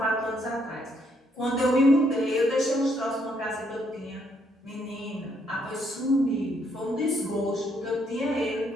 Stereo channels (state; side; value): normal; both; correlation 0.72